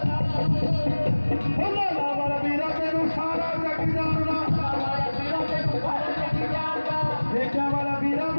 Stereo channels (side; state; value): both; inverted; correlation -1.00